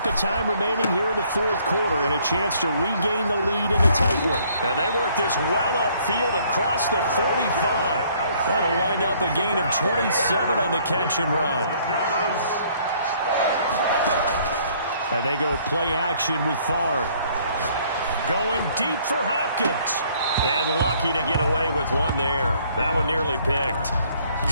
of time remaining here in the 4th quarter and a chance to regain the lead in a tight one. And they work this well upfield across the 45. That'll wind up a gain of 27 on the catch and run. And they go play action with Favre. Going deep for Hopkins. And lucky to get away with one there. That one nearly picked.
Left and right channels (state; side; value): inverted; both; correlation -0.62